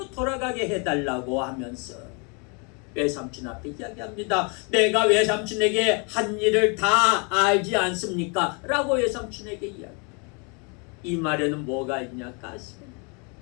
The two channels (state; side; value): quieter; right; 34.2 dB